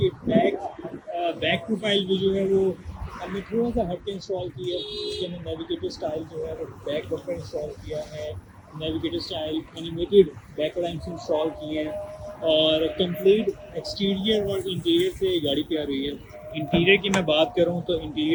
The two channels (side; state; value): both; identical; correlation 1.00